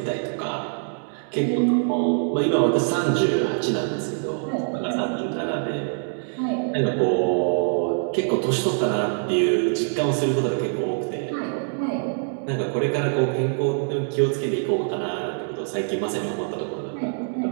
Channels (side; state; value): left; silent; 60 dB below the other